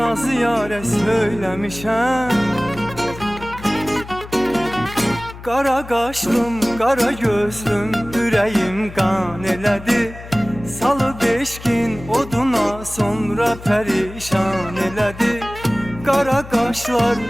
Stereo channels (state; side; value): noise; left; hum, 15 dB below the sound